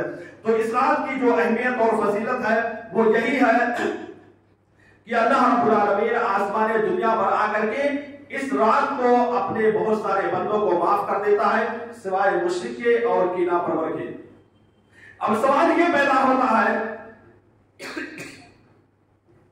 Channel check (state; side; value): identical; both; correlation 1.00